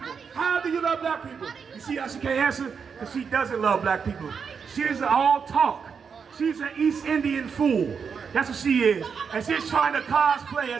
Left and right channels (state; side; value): quieter; left; 6.2 dB